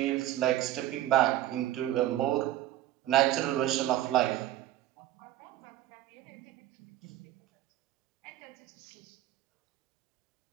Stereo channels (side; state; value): left; quieter; 14.0 dB